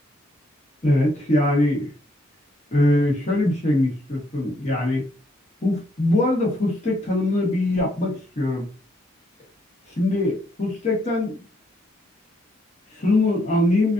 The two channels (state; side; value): normal; both; correlation 0.73